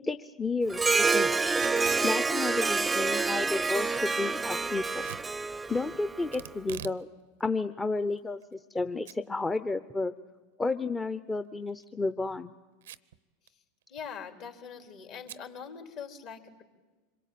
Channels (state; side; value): normal; both; correlation 0.87